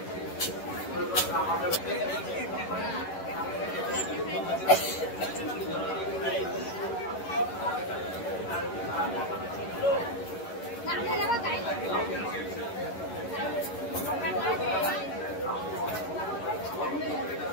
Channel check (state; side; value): late; right; 11 ms